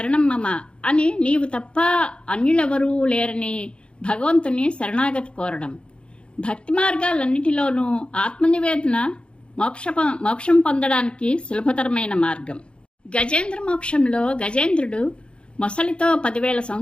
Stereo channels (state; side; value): late; right; 0.056 ms